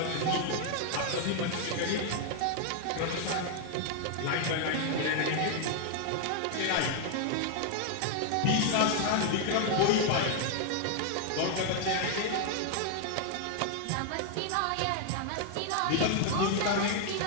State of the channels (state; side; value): different; both; correlation 0.00